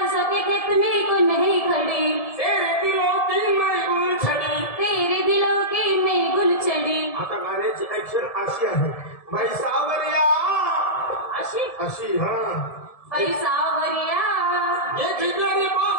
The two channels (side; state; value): right; late; 1.7 ms